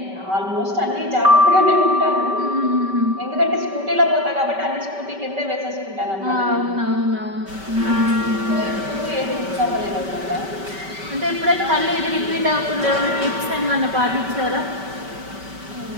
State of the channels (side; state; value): left; late; 5.2 ms